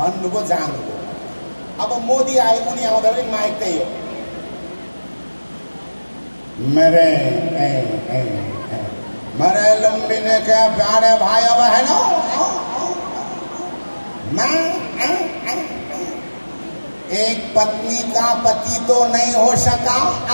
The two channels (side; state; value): both; inverted; correlation -1.00